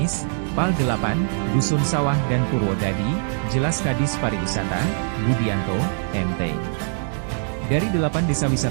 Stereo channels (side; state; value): left; silent; 57 dB below the other